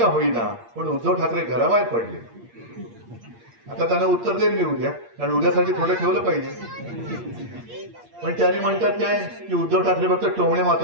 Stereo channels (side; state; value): left; late; 8.6 ms